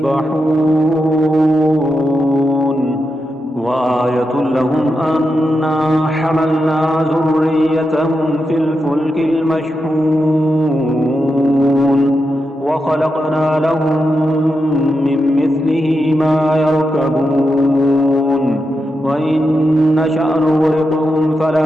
وآية لهم أنا حملنا ذريتهم في الفلك المشحون وخلقنا لهم من مثله ما يركبون وإن نشأ نغرقهم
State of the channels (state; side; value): normal; both; correlation 0.87